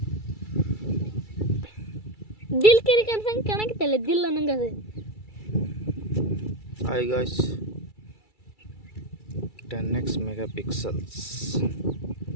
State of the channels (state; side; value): late; right; 2.3 ms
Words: ದಿಲ್ ಕೆರಿ ಕನ್ಸಂಗೆ ಕಾಣಕತ್ತಲ್ಲ, ದಿಲ್ ಅನ್ನಂಗೆ ಅದು. Hi guys, 10x megapixels